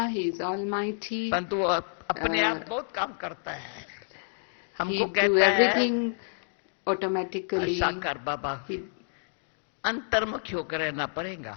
he is almighty, परंतु अपने आप बहुत काम करता है. हमको कहता है everything automatically. साकार बाबा अंतर्मुखी होकर रहना पड़ेगा.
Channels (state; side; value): silent; right; digital silence